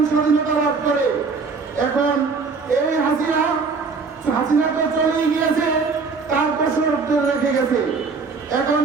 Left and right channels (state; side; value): quieter; left; 4.6 dB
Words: স্বাধীনতা লাভ করে। এখন এই হাসিনা তো চলেই গিয়েছে, তার দোষর রেখে গেছে। এখন